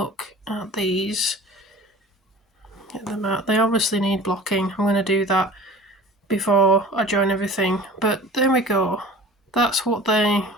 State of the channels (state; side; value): normal; both; correlation 0.41